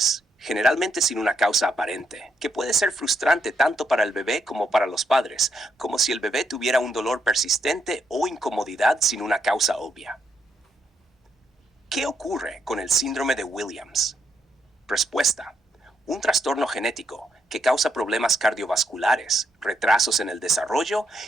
generalmente sin una causa aparente, que puede ser frustrante tanto para el bebé como para los padres, como si el bebé tuviera un dolor persistente o incomodidad sin una causa obvia. ¿Qué ocurre con el síndrome de Williams? Respuesta: un trastorno genético que causa problemas cardiovasculares, retrasos en el desarrollo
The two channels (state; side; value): normal; both; correlation 0.77